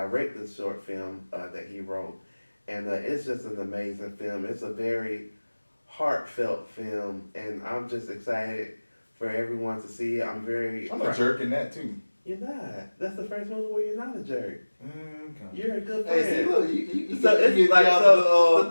this short film that he wrote, and it's just an amazing film. It's a very heartfelt film, and I'm just excited for everyone to see it. I'm a jerk in that too. You're not. That's the first movie where you're not a jerk. Okay. You're a good friend. Hey, see, look, you So it's get like, out so of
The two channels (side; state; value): both; inverted; correlation -1.00